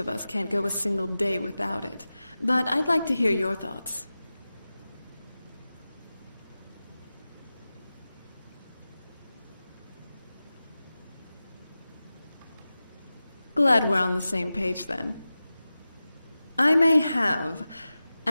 us can't go a single day without it, but I'd like to hear your thoughts. Glad we're on the same page then. I may have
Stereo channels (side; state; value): both; inverted; correlation -0.95